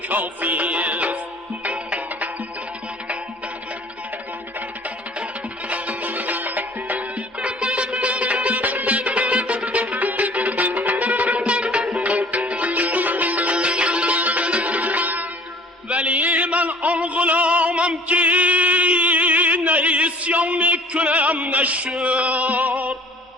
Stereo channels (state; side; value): normal; both; correlation 0.50